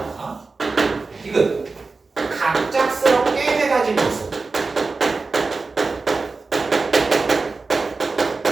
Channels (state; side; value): quieter; left; 4.0 dB